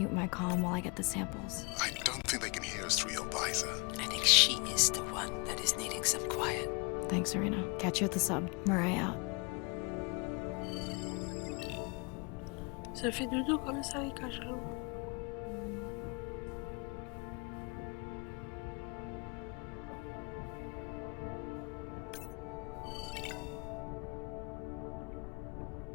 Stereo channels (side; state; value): right; quieter; 31.6 dB